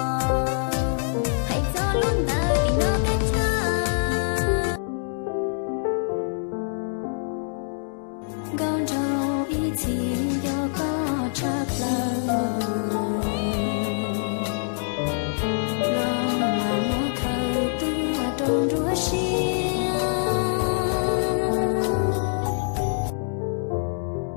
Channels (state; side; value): silent; right; digital silence